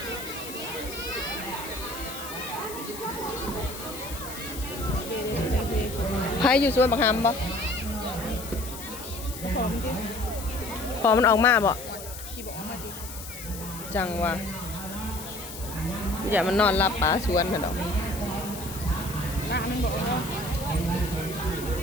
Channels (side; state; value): left; noise; hiss, 11 dB below the sound